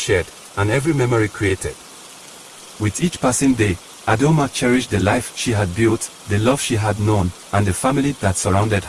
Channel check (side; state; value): both; identical; correlation 1.00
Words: and every memory created. With each passing day, Adoma cherished the life she had built, the love she had known, and the family that surrounded